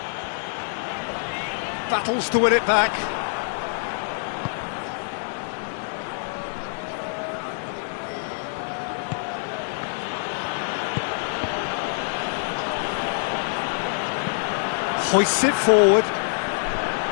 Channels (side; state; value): right; silent; 62 dB below the other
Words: Battles to win it back. Hoists it forward.